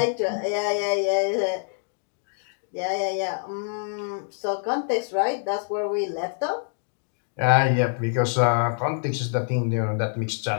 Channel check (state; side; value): silent; right; digital silence